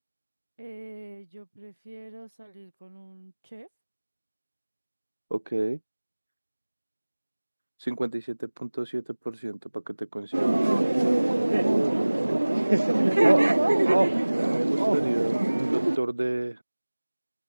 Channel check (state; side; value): inverted; both; correlation -1.00